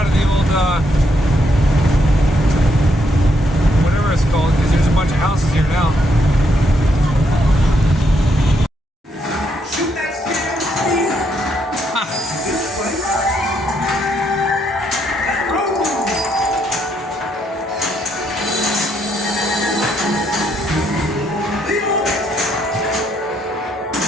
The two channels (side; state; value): both; normal; correlation 0.75